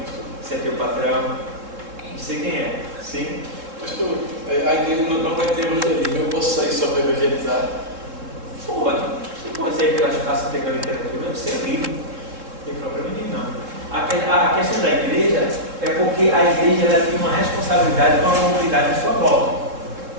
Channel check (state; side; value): late; left; 3.7 ms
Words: se é teu patrão, não sei quem é. Sim? Pastor, a igreja não vai ter evangelismo, eu posso sair só para evangelizar? Pode. Você pode sair pelas praças pegando literatura, você é livre. Não tem problema nenhum, não. A questão da igreja é porque a igreja ela tem uma responsabilidade com a comunidade à sua volta.